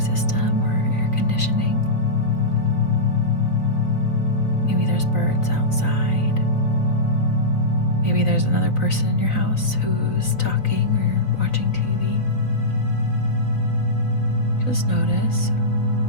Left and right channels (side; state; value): right; late; 3.9 ms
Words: or air conditioning. Maybe there's birds outside. Maybe there's another person in your house who's talking or watching TV. Just notice.